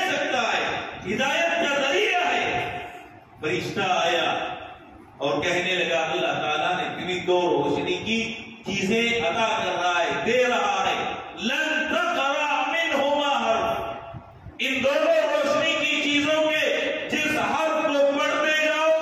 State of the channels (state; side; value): identical; both; correlation 1.00